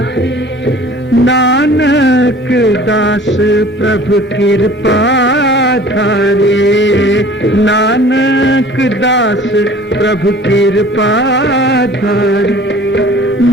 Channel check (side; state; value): both; normal; correlation 0.47